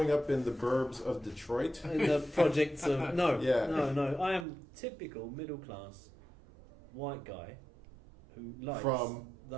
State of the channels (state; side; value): drops out; left; at 4.5 s